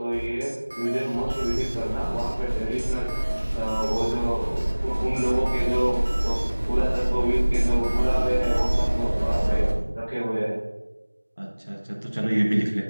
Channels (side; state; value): both; inverted; correlation -1.00